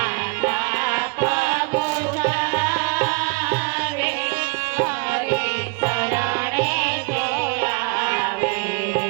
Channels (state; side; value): quieter; left; 32.7 dB